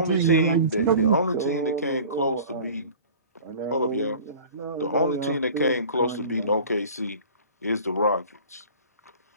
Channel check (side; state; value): both; inverted; correlation -0.43